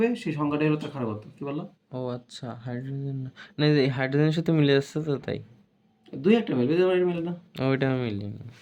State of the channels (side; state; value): both; identical; correlation 1.00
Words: সেই সংখ্যাটাই হলো তার ক্ষারকত্ব। কি বললো? ও আচ্ছা, হাইড্রোজেন না, না এই হাইড্রোজেনের সাথে মিলে যাচ্ছে তো তাই। 2 একটা মিলবে, মিলে না। ওইটা মিলে না।